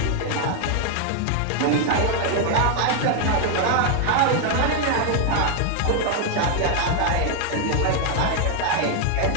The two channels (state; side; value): different; both; correlation 0.00